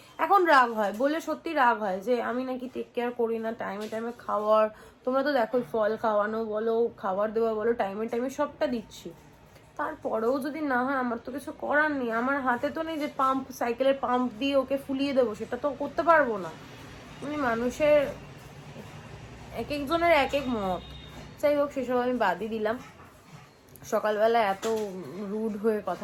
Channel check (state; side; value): identical; both; correlation 1.00